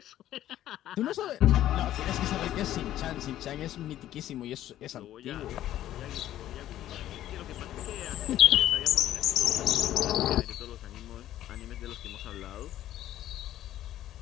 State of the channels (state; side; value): quieter; right; 12.8 dB